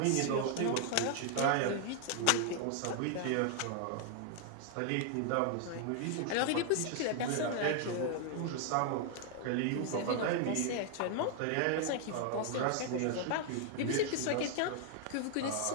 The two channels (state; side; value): different; both; correlation 0.00